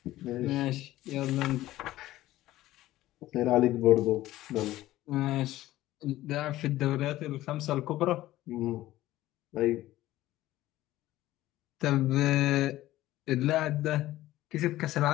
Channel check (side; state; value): right; quieter; 15.6 dB